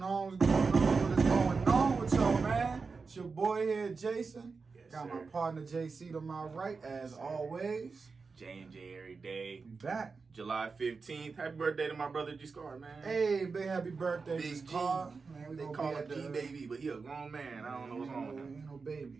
on? What's going on? What's going on with y'all, man? It's your boy here, Jason. Yes, Got sir. my partner, JC, to my right, as always. J&J every day. We back. July 15th. Happy birthday to my brother G Scar, man. Hey, big happy birthday, Big G. Car. Man, we They gonna call be him at the G-Baby, but he a grown man. I don't know what's wrong with him. Ain't no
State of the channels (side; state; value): left; quieter; 4.6 dB